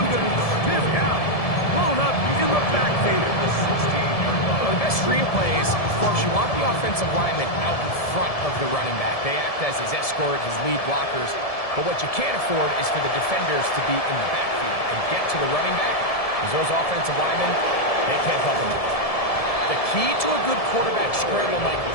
going to stiff out. Blown up in the backfield. Well, the best screen plays, of course, you want the offensive lineman out in front of the running back. They act as his escort, his lead blockers. But what you can't afford is for the defenders to be in the backfield and get to the running back, because those offensive linemen, they can't help them out. The key to a good quarterback scramble, Mike,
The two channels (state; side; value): late; right; 1.7 ms